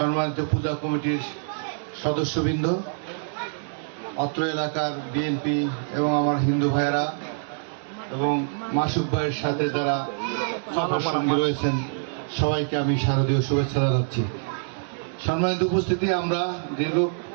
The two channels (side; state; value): left; silent; digital silence